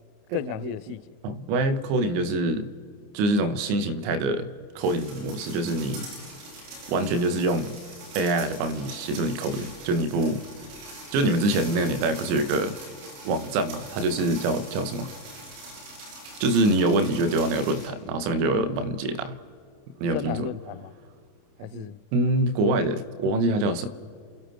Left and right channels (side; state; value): left; late; 29 ms